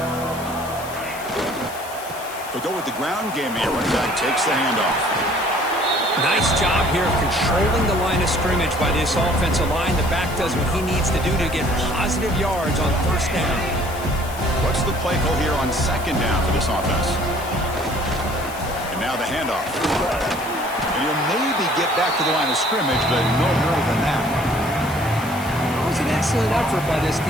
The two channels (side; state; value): left; noise; hiss, 15 dB below the sound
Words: They'll go with the ground game here. Running back takes the handoff. Nice job here of controlling the line of scrimmage by this offensive line. The back does what he needs to do to get positive yards on 1st down. What's the play call here on 2nd down for this offense? And now the handoff. And he'll maybe get back to the line of scrimmage, but no more than that. It was an excellent effort by this